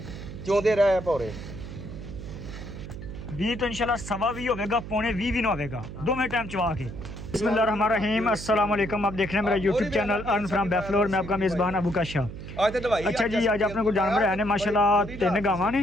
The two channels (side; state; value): right; noise; hum, 10 dB below the sound